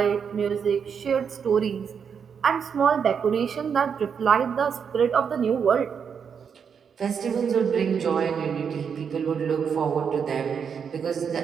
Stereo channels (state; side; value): quieter; left; 6.9 dB